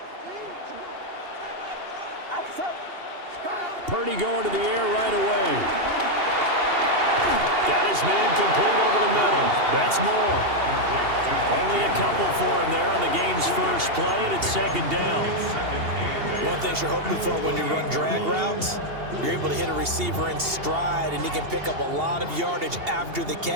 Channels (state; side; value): late; left; 2.8 ms